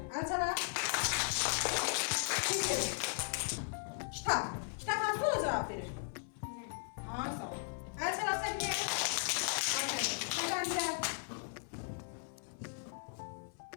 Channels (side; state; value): right; silent; 53 dB below the other